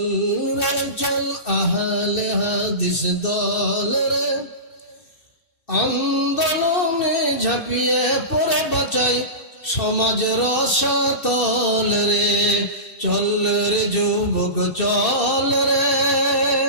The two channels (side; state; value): right; late; 2.6 ms